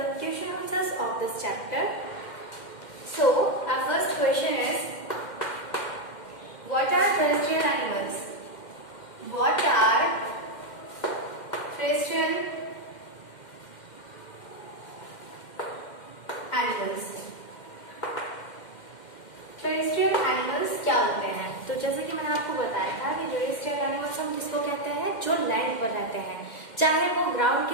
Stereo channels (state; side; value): late; right; 2.1 ms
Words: question answers of this chapter. So, our first question is, what are terrestrial animals? What are terrestrial animals? Terrestrial animals क्या होते हैं? तो जैसे कि मैंने आपको बताया था कि टेरेस्ट्रियल एनिमल्स हम किसको कहते हैं, जो लैंड पर रहते हैं, चाहे वो ग्राउंड